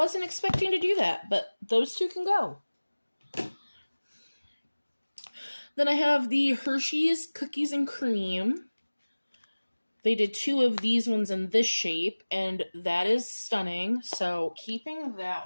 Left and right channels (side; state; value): both; inverted; correlation -1.00